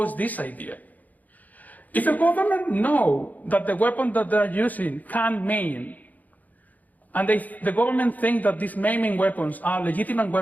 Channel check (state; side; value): late; right; 0.080 ms